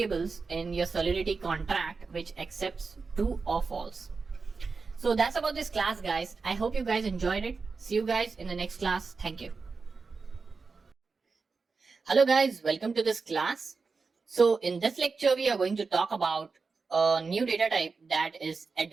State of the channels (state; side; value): quieter; left; 4.6 dB